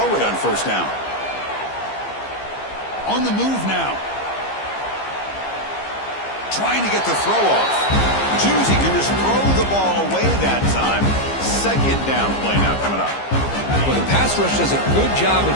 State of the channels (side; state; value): right; late; 15 ms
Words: it on 1st down. On the move now. Trying to get the throw off. Choosing to just throw the ball away that time. 2nd down play now coming up. Well, the pass rush does a good job of